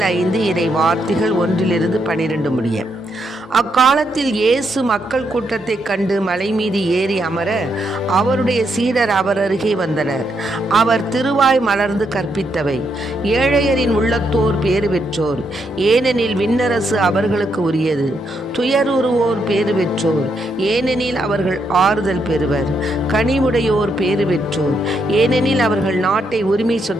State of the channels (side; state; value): both; normal; correlation 0.78